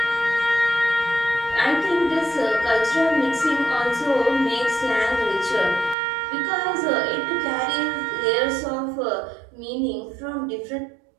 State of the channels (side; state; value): left; drops out; at 6.0 s